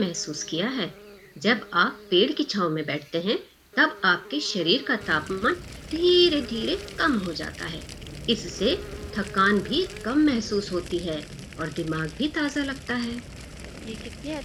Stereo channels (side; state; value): both; identical; correlation 1.00